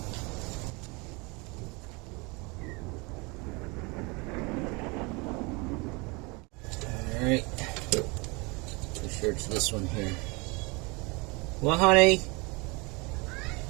Alright. Pretty sure it's this one here. Well, honey?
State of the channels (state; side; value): quieter; left; 27.7 dB